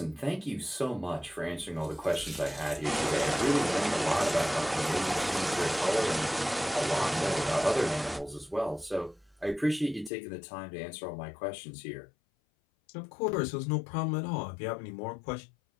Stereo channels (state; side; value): drops out; right; at 10.1 s